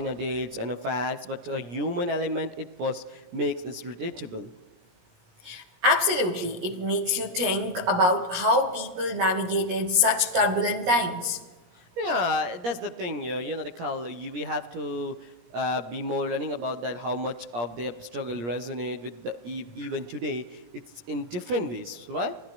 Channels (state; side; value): late; left; 17 ms